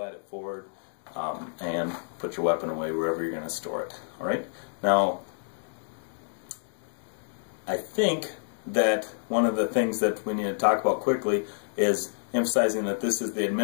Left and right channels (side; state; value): right; silent; digital silence